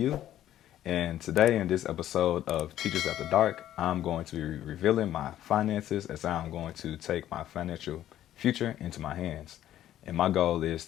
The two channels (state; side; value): quieter; right; 12.3 dB